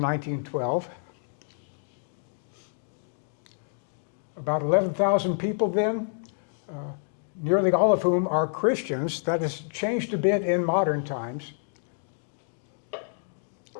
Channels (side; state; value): right; silent; digital silence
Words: About 11,000 people then, nearly all of whom are Christians. That has changed a bit in modern times.